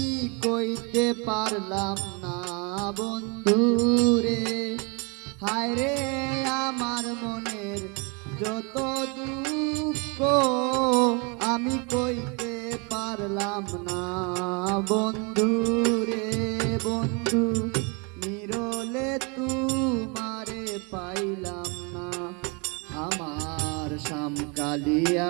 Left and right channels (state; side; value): quieter; left; 32.2 dB